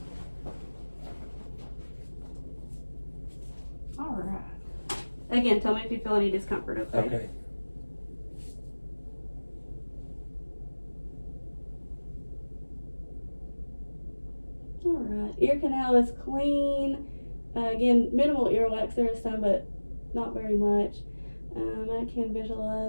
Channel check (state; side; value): inverted; both; correlation -1.00